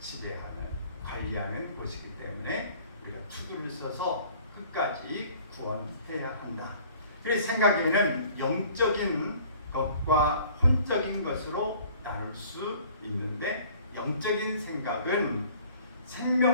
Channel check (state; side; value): inverted; both; correlation -0.52